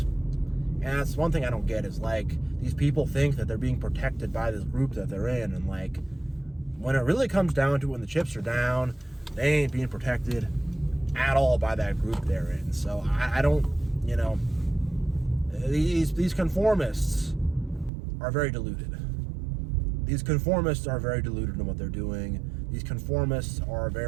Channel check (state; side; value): drops out; left; at 17.9 s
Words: And that's one thing I don't get is these people think that they're being protected by this group that they're in. And when it really comes down to it, when the chips are down, they ain't being protected at all by that group they're in. So I don't, these conformists are very deluded. These conformists are very deluded in what they're doing. These conformists are